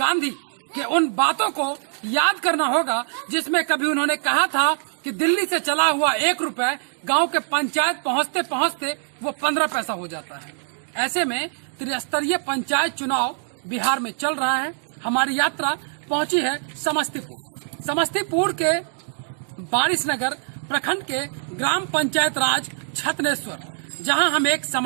के उन बातों को याद करना होगा जिसमें कभी उन्होंने कहा था कि दिल्ली से चला हुआ 1 रुपए गांव के पंचायत पहुंचते पहुंचते वो 15 पैसा हो जाता है। ऐसे में त्रिस्तरीय पंचायत चुनाव बिहार में चल रहा है। हमारी यात्रा पहुंची है समस्तीपुर। समस्तीपुर के बारिशनगर प्रखंड के ग्राम पंचायत राज छतनेश्वर, जहां हम एक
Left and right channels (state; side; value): silent; left; digital silence